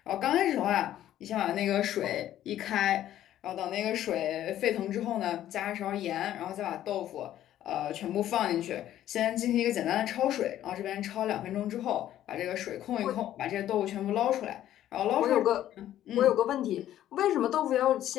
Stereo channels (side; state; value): right; quieter; 12.3 dB